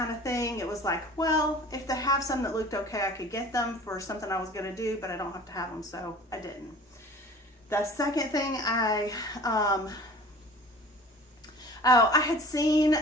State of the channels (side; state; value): both; normal; correlation 0.44